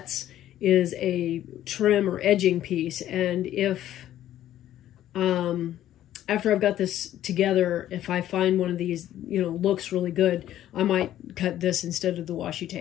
is a trim or edging piece. And if after I've got this together, if I find one of these, you know, looks really good, I might cut this instead of the washi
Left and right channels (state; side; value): quieter; right; 12.5 dB